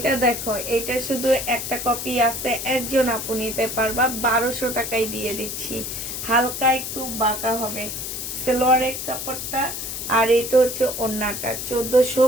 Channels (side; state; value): left; noise; hiss, 5 dB below the sound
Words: দেখো, এটা শুধু একটা কপি আছে, একজন আপু নিতে পারবা, 1200 টাকায় দিয়ে দিচ্ছি। হালকা একটু বাঁকা হবে সালোয়ারের কাপড়টা, আর এটা হচ্ছে ওড়নাটা।